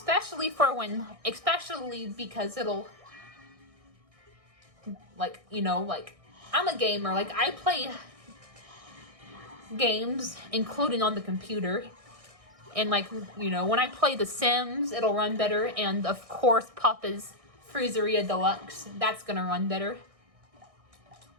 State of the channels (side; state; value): left; late; 1.6 ms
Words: because it'll, I'm a gamer. I play games, including on the computer. And, when I play The Sims, it'll run better. And, of course, Papa's Freezeria Deluxe. That's gonna run better.